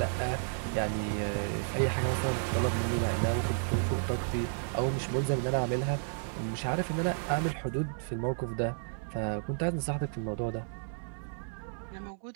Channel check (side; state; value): left; silent; 56 dB below the other